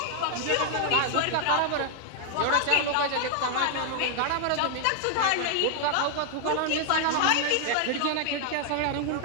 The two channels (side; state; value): both; different; correlation 0.00